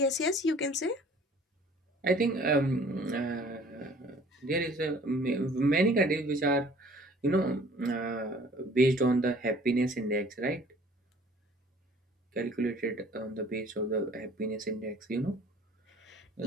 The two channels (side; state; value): both; normal; correlation 0.52